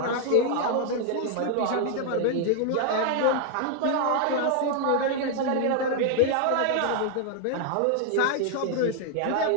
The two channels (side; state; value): both; different; correlation 0.00